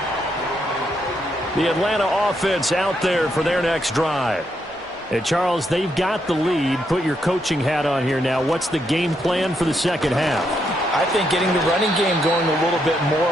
The Atlanta offense out there for their next drive. And Charles, they've got the lead. Put your coaching hat on here now. What's the game plan for the second half? I think getting the running game going a little bit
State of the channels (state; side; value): normal; both; correlation 0.78